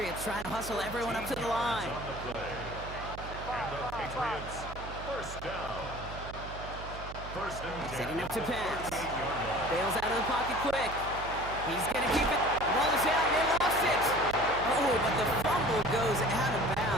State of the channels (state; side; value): noise; right; hum, 11 dB below the sound